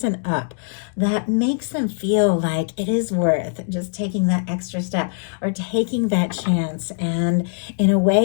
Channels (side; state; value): right; silent; 65 dB below the other